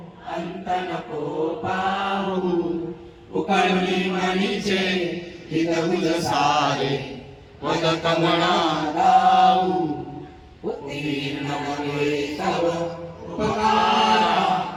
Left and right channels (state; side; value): identical; both; correlation 1.00